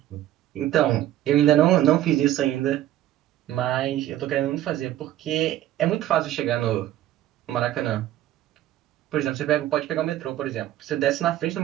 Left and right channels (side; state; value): left; quieter; 13.2 dB